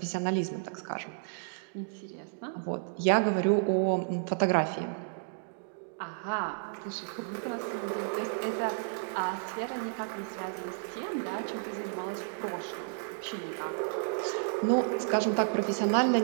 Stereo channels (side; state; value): left; silent; digital silence